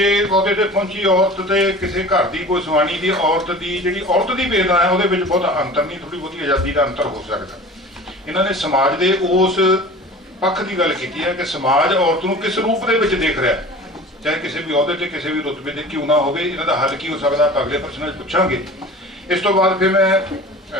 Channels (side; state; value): both; normal; correlation 0.40